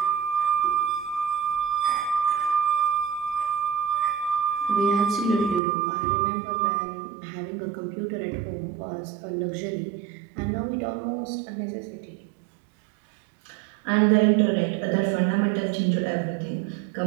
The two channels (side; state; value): left; drops out; at 5.6 s